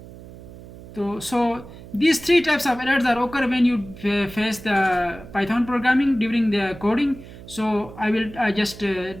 So these three types of errors are occur when you face the Python programming during the coding. So I will just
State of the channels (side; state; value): right; noise; hum, 17 dB below the sound